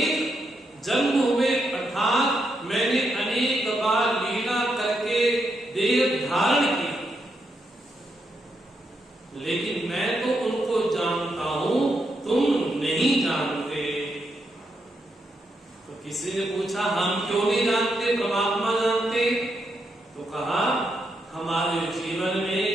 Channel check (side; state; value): both; normal; correlation 0.81